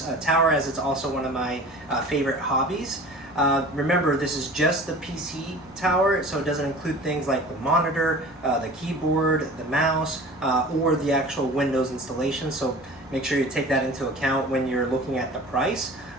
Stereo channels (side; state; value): both; normal; correlation 0.40